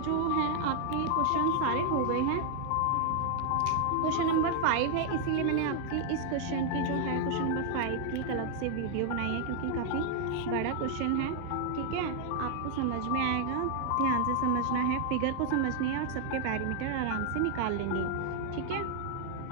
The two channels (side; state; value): both; different; correlation 0.00